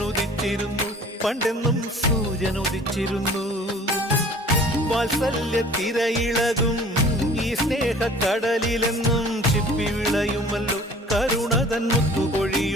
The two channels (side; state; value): both; normal; correlation 0.49